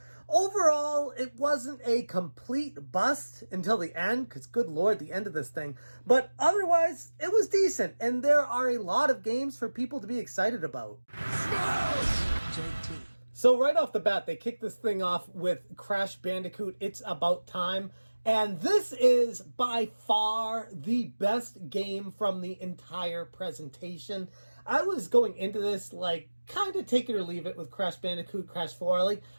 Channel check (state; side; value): inverted; both; correlation -1.00